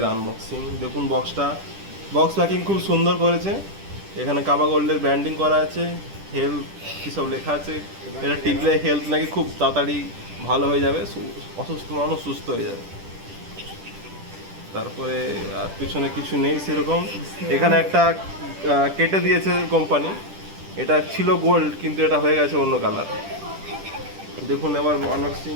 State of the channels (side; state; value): left; late; 10 ms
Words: আনবক্সিং। দেখুন বক্স প্যাকিং খুব সুন্দর করেছে। এখানে কাবা গোল্ডের ব্র্যান্ডিং করা আছে, হেলথ কী সব লেখা আছে। এটা টিপলে হেলথ নাকি খুব তাড়াতাড়ি ভালো হয়ে যাবে, অসুস্থ মানুষ সুস্থ হয়ে যাবে। তারপরে আর পিছনে কিছু নেই সেরকম। এখানে একটা কেটে দিয়েছে কোম্পানি, এটা ছিল গোল্ড কিন্তু এটা হয়ে গেছে অন্য কালার। দেখুন এবার আনবক্সিং